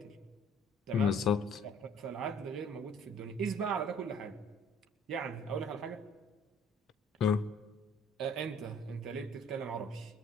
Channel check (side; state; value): both; normal; correlation 0.55